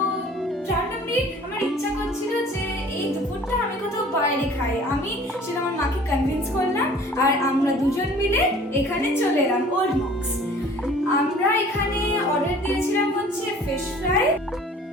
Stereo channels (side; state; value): both; normal; correlation 0.49